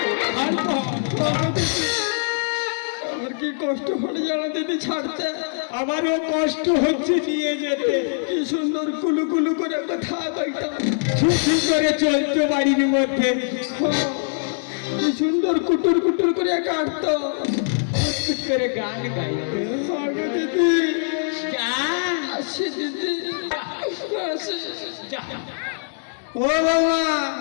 আমার কি কষ্ট হলে জানো দিদি ছাড়তে, আমারও কষ্ট হচ্ছে নিয়ে যেতে কি সুন্দর কুলু কুলু করে কথা কইতাম, ছুটি করে চলতো বাড়ির মধ্যে কি সুন্দর কুটুর কুটুর করে কাটতো, ফুট করে গান গাইতো আগো দিদি, যা আসি দিদি, আসি। যা ও বাবা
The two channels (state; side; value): silent; right; digital silence